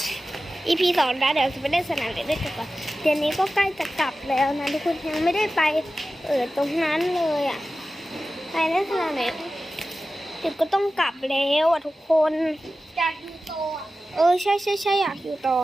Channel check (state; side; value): normal; both; correlation 0.94